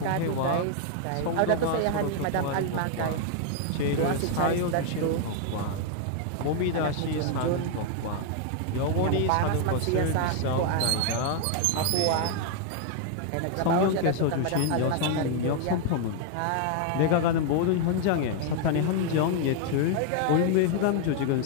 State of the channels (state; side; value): different; both; correlation 0.00